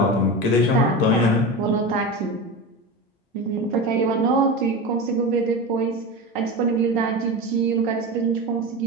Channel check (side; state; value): both; normal; correlation 0.24